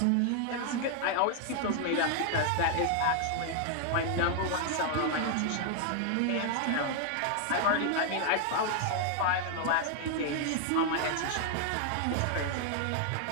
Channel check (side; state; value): both; different; correlation 0.00